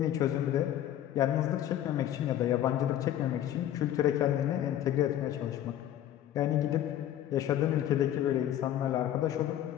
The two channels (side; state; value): right; quieter; 11.6 dB